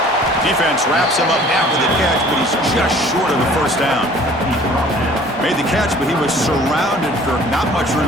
Defense wraps him up after the catch, but he's just short of the first down. Made the catch, but he was surrounded for not much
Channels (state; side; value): normal; both; correlation 0.51